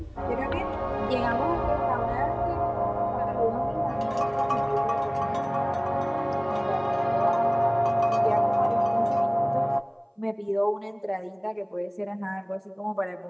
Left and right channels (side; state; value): both; identical; correlation 1.00